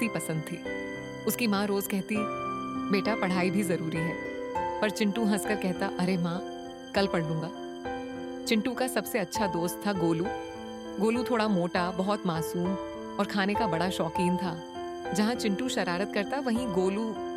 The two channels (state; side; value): identical; both; correlation 1.00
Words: पसंद थी। उसकी माँ रोज कहती, बेटा पढ़ाई भी जरूरी है, पर चिंटू हंसकर कहता, अरे माँ कल पढ़ लूंगा। चिंटू का सबसे अच्छा दोस्त था गोलू। गोलू थोड़ा मोटा, बहुत मासूम और खाने का बड़ा शौकीन था। जहां चिंटू शरारत करता, वहीं गोलू